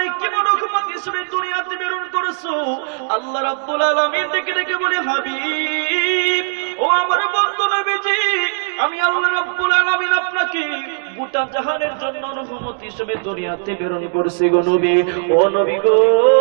কেমন রহমত হিসেবে দুনিয়াতে প্রেরণ করেছো? আল্লাহ রাব্বুল আলামিন ডেকে ডেকে বলে, হাবিব ও আমার বন্ধু নবীজি, আমি আল্লাহ রাব্বুল আলামিন আপনাকে গোটা জাহানের জন্য রহমত হিসেবে দুনিয়াতে প্রেরণ করেছি গো নবী। ও নবী গো,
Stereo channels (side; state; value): left; silent; digital silence